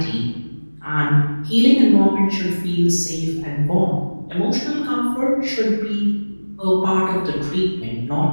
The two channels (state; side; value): inverted; both; correlation -1.00